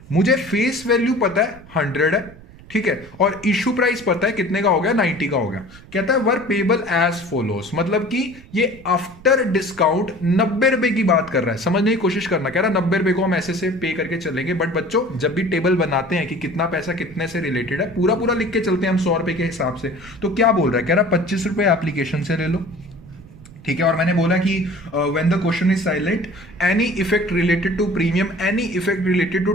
मुझे फेस वैल्यू पता है 100 है, ठीक है, और इशू प्राइस पता है कितने का हो गया, 90 का हो गया। कहता है वर पेबल एज फॉलोस, मतलब कि ये आफ्टर डिस्काउंट 90 रुपए की बात कर रहा है, समझने की कोशिश करना। कह रहा है 90 रुपए को हम ऐसे से पे करके चलेंगे, बट बच्चों जब भी टेबल बनाते हैं कि कितना पैसा कितने से रिलेटेड है, पूरा पूरा लिख के चलते हैं हम 100 रुपए के हिसाब से। तो क्या बोल रहा है, कह रहा है 25 रुपए एप्लीकेशन से ले लो, ठीक है, और मैंने बोला कि when the question is silent any effect related to premium, any effect related to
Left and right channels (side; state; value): right; noise; rumble, 20 dB below the sound